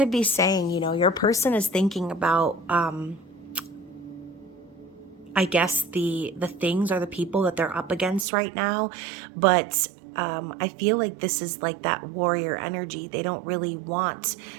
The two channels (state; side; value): drops out; left; at 8.2 s